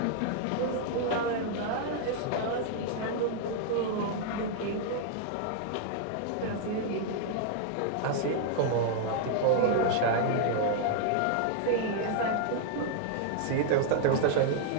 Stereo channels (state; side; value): different; both; correlation 0.00